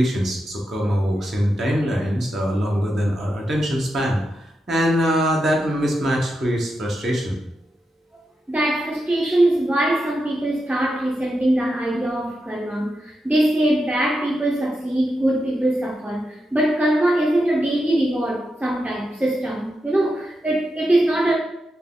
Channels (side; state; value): both; normal; correlation 0.87